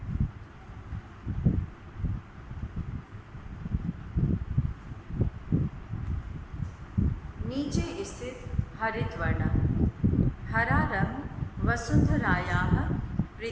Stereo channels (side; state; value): both; identical; correlation 1.00